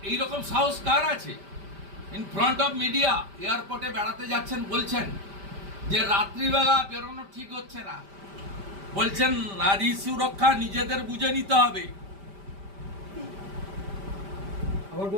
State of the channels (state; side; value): late; left; 5.1 ms